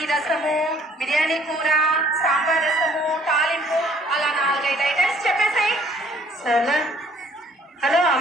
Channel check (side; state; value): both; normal; correlation 0.59